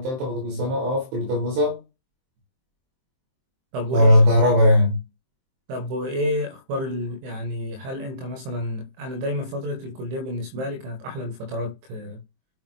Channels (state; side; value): late; left; 23 ms